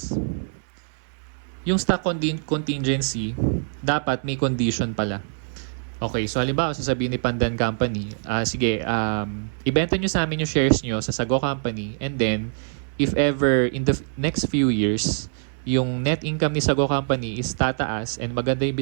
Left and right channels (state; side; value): silent; left; 62 dB below the other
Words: Yung stock contingency, dapat may condition pala. Okay, so halimbawa, sasabihin ni Pandan Company, sige, ibenta nyo sa amin yung shares nyo sa Sago Company, and then, if ever in the next few years, yung net income ni Sago Company is tataas and maganda yung